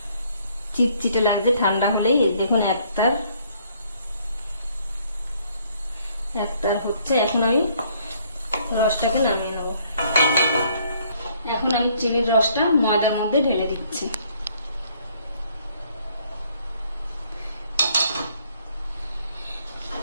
চিটচিটে লাগবে। ঠান্ডা হলেই দেখুন এক তার হচ্ছে। এখন আমি রসটাকে নামিয়ে নেব। এখন আমি চিনির রসটা ময়দার মধ্যে ঢেলে দিচ্ছি।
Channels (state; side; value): inverted; both; correlation -0.65